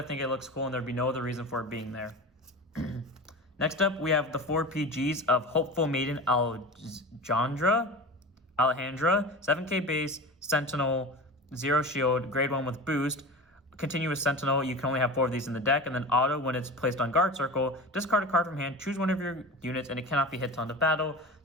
think it looks cool and there'd be no other reason for it being there. Next up, we have the 4 PGs of Hopeful Maiden Alejandra, 7k base, Sentinel, 0 shield, grade 1 with boost. Continuous Sentinel, you can only have 4 of these in the deck, and then auto, when it's placed on guard circle, discard a card from hand, choose one of your units, and it cannot be hit till end of battle.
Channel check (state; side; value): normal; both; correlation 0.31